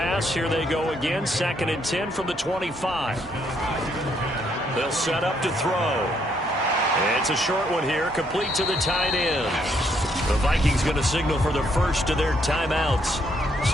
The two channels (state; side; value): normal; both; correlation 0.72